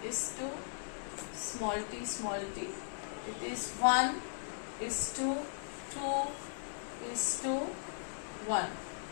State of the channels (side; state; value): right; silent; 53 dB below the other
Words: is to small t small t. It is 1 is to 2 is to 1.